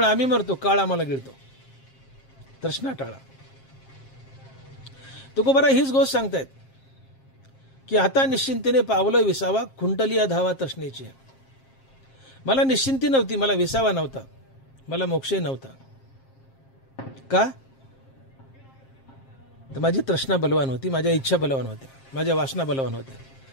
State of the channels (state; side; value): late; right; 7.5 ms